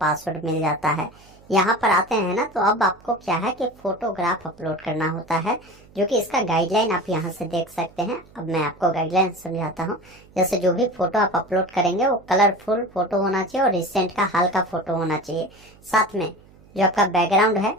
मिल जाता है। यहाँ पर आते हैं ना तो अब आपको क्या है कि फोटोग्राफ अपलोड करना होता है, जो कि इसका गाइडलाइन आप यहाँ से देख सकते हैं। अब मैं आपको गाइडलाइन समझाता हूँ। जैसे जो भी फोटो आप अपलोड करेंगे वो कलरफुल फोटो होना चाहिए और रिसेंट का हाल का फोटो होना चाहिए। साथ में जो आपका बैकग्राउंड है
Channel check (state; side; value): noise; right; hum, 26 dB below the sound